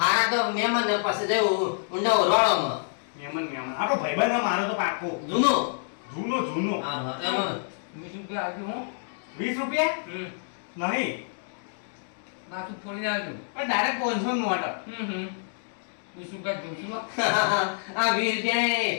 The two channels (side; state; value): right; silent; digital silence